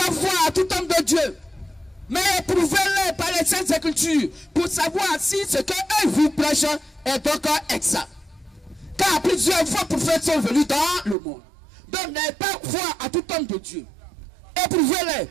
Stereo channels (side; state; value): left; drops out; at 11.2 s